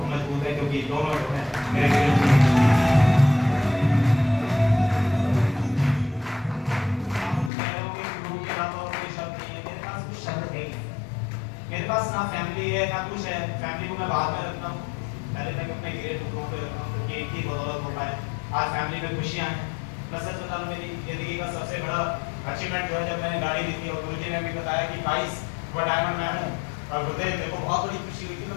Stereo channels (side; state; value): right; drops out; at 7.5 s